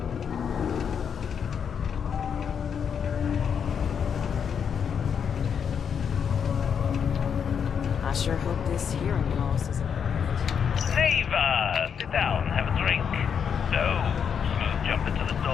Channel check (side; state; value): right; quieter; 7.3 dB